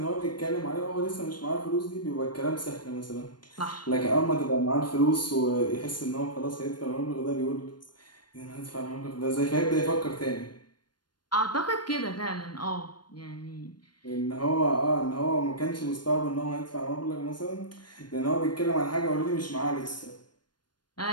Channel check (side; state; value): right; late; 0.71 ms